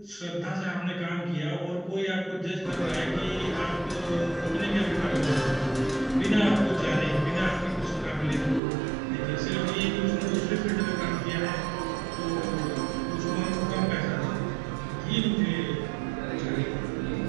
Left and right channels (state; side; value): drops out; left; at 8.6 s